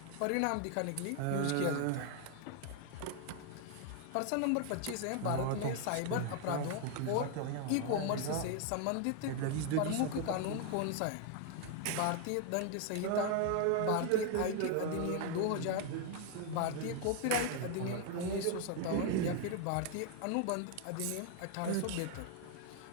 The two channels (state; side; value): different; both; correlation 0.00